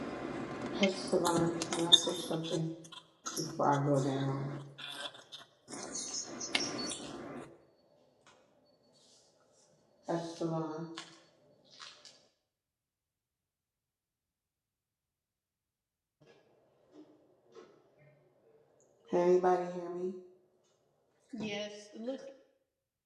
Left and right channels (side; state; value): both; identical; correlation 1.00